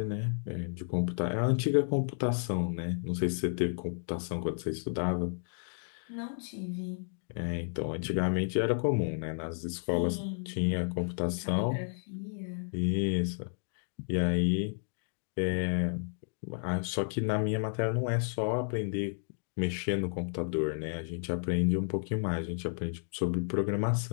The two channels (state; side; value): silent; right; digital silence